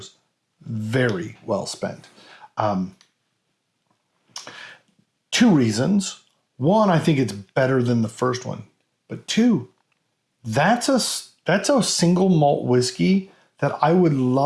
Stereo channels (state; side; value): identical; both; correlation 1.00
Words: very well spent. 2 reasons. 1, I think it's better than the first one. But 2, that's a single malt whiskey that I would